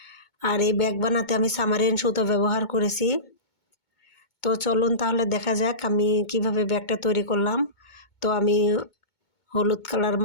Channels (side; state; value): right; late; 2.2 ms